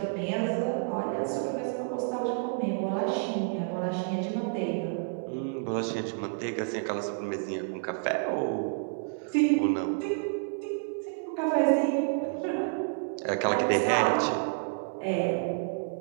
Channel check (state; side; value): silent; left; digital silence